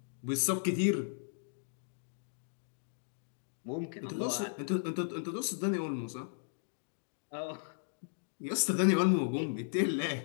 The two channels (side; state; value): right; silent; digital silence